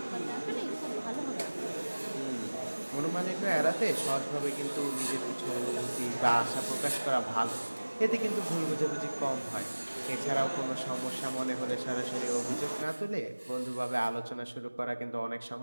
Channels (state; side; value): inverted; both; correlation -1.00